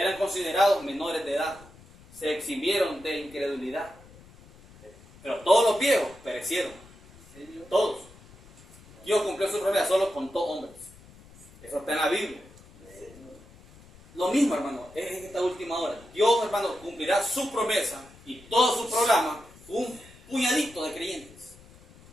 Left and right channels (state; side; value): noise; left; rumble, 23 dB below the sound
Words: considerados menores de edad. Se exhibieron de incredulidad. Pero todos los viejos perecieron. Todos. Dios cumplió su promesa solo con 2 hombres. Eso está en la Biblia. Lo mismo, hermano, es en esta última hora. Dios, hermano, cumplirá su promesa y todo su programa con un puñadito de creyentes.